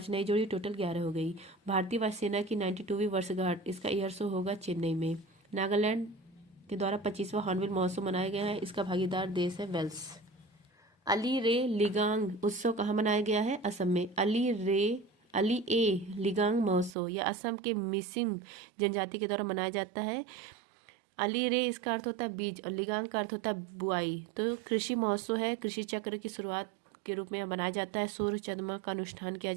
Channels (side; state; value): left; drops out; at 16.9 s